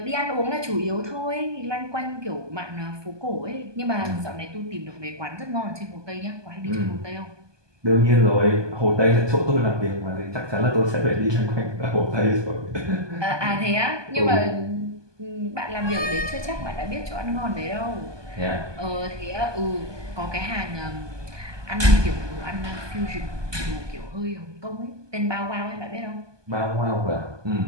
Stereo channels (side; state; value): left; late; 1.2 ms